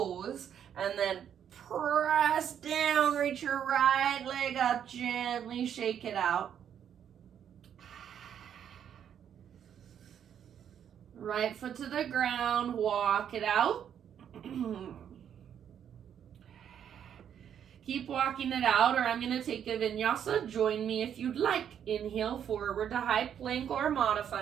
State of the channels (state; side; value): quieter; left; 9.0 dB